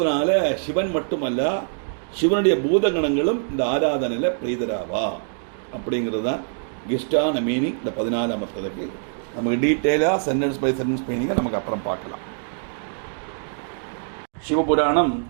சிவன் மட்டுமல்ல, சிவனுடைய பூதகணங்களும் இந்த ஆராதனையில் பிரீதராவா அப்படிங்கிறது தான் கிஷ்டான மீனிங். இந்த 14ஆமத்துக்கு நமக்கு டீட்டெயிலாக சென்டென்ஸ் பை சென்டென்ஸ் மீனிங்கை நமக்கு அப்புறம் பார்க்கலாம். சிவபுராணம்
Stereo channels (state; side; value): silent; left; digital silence